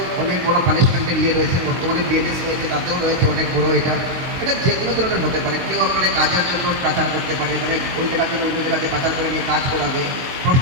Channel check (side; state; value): left; late; 22 ms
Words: অনেক বড় পানিশমেন্টের রয়েছে, বর্তমানে বিএনএস রয়েছে, তাতেও রয়েছে অনেক বড়। এটা যে কোনো ধরনের হতে পারে। কেউ আপনার কাজের জন্য পাচার করতে পারে, মানে ওই জায়গা থেকে অন্য জায়গাতে পাচার করে নিয়ে কাজ করাবে,